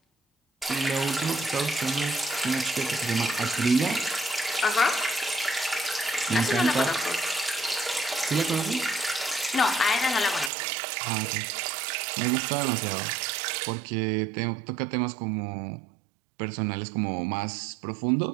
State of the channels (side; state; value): left; drops out; at 10.5 s